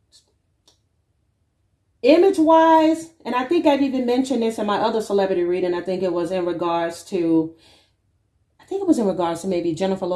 image-wise, and I think I've even mentioned this in my other celebrity reading. I think it was in regards to maybe Jennifer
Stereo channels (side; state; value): both; identical; correlation 1.00